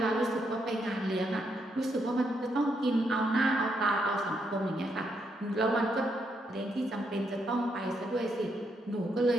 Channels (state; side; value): normal; both; correlation 0.78